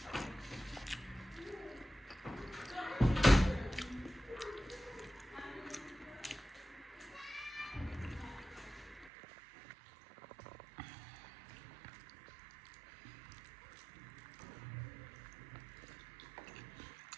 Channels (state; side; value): drops out; left; at 9.1 s